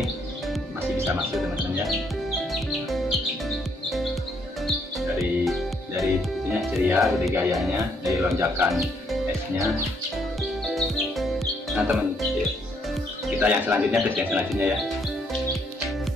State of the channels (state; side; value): normal; both; correlation 0.71